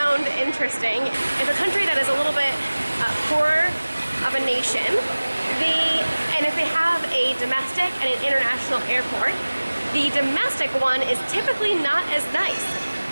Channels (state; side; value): inverted; both; correlation -1.00